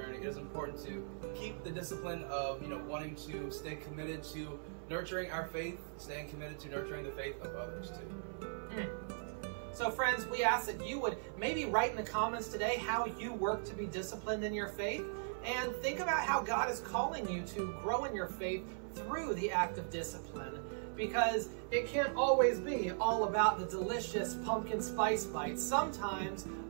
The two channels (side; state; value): left; silent; 52 dB below the other